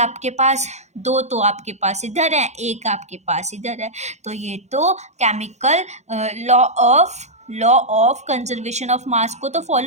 पास 2 तो आपके पास इधर है, 1 आपके पास इधर है, तो ये तो chemical law of conservation of मास को तो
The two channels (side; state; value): left; late; 0.33 ms